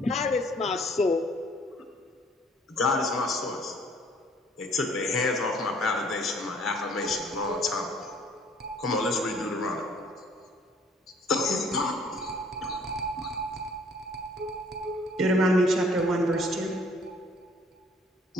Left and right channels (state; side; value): normal; both; correlation 0.58